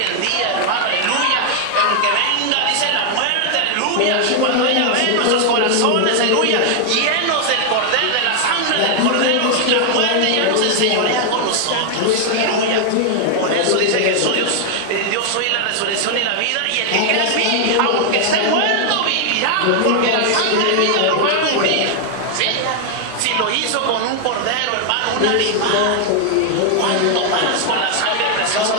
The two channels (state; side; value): different; both; correlation 0.00